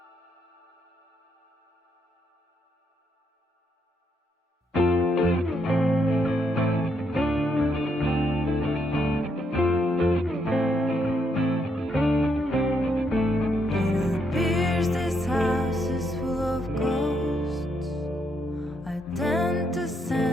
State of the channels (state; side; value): normal; both; correlation 0.76